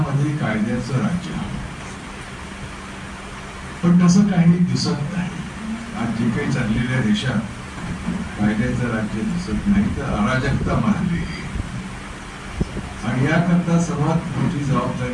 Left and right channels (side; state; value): both; identical; correlation 1.00